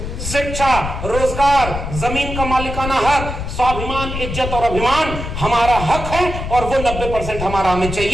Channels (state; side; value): noise; left; rumble, 6 dB below the sound